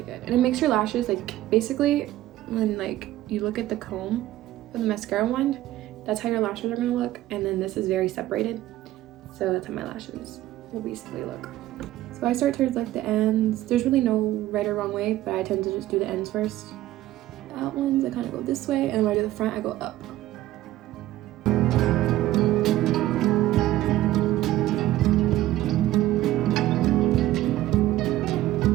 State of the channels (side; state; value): left; quieter; 15.0 dB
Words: good, and it makes your lashes, like basically when like you look at the comb for the mascara one, that's how your lashes are going to look, and then this is very separated. So that's how my lashes will basically look. So I start towards like the ends. There's really no right or wrong way, but I tend to just do the ends first. The out ones, I kind of go this way, and when I do the front, I go up.